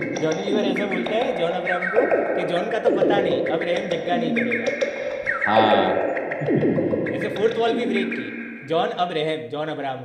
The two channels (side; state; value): both; identical; correlation 1.00